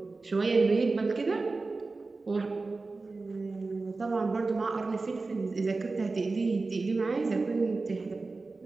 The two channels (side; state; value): left; quieter; 3.7 dB